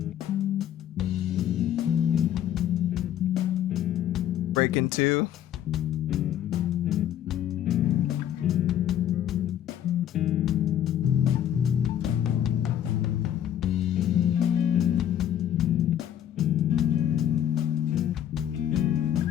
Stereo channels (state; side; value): quieter; right; 10.7 dB